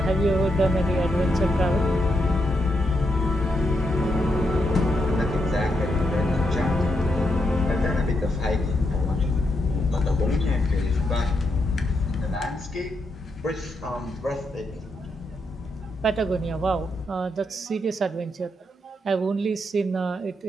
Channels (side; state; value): both; normal; correlation 0.81